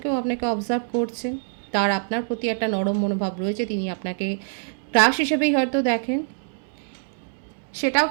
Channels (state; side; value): silent; left; digital silence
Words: কেউ আপনাকে অবজার্ভ করছেন, তার আপনার প্রতি একটা নরম মনোভাব রয়েছে, তিনি আপনাকে ক্রাশ হিসেবেই হয়তো দেখেন। সেটাও